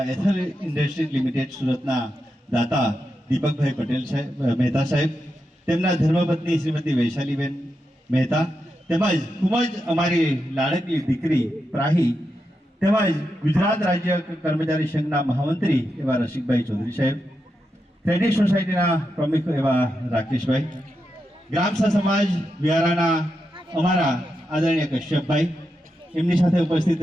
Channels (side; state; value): both; normal; correlation 0.87